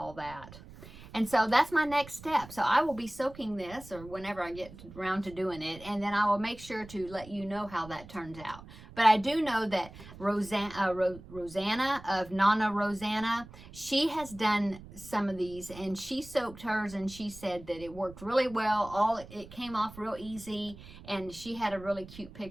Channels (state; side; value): noise; right; rumble, 17 dB below the sound